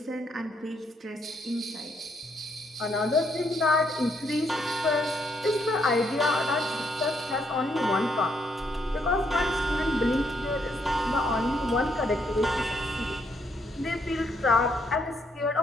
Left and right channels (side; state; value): both; normal; correlation 0.74